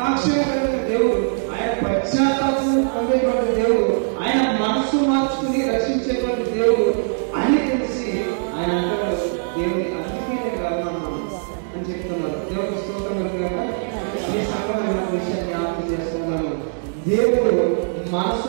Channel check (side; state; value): left; silent; digital silence